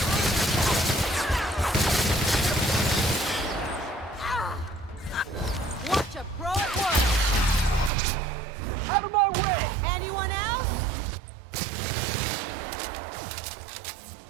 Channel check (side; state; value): left; drops out; at 7.9 s